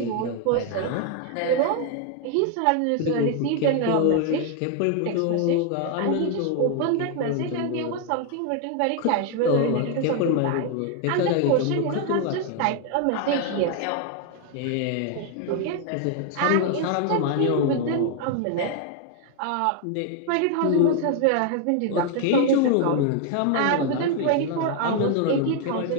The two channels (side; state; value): both; different; correlation 0.00